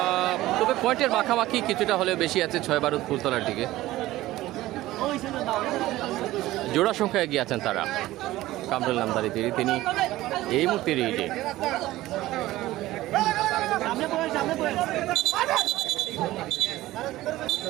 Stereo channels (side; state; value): left; quieter; 16.6 dB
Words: তবে পয়েন্টের মাখামাখি কিছুটা হলেও বেশি আছে 6-12 ফুলতলার দিকে। জোড়া সংখ্যা এগিয়ে আছেন তারা। কামরুল নামদারি তিনি এই মুহূর্তে রিডে।